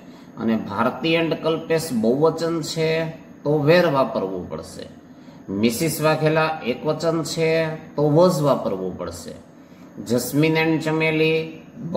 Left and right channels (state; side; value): identical; both; correlation 1.00